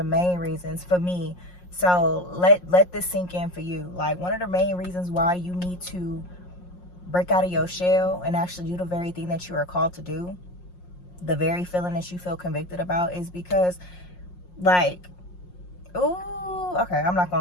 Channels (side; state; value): right; late; 5.6 ms